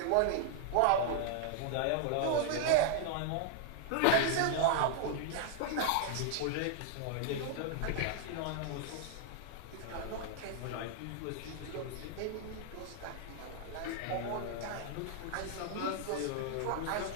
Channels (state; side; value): different; both; correlation 0.00